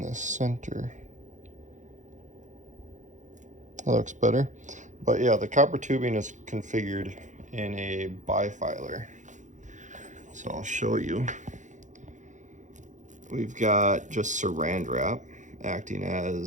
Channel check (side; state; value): left; late; 0.36 ms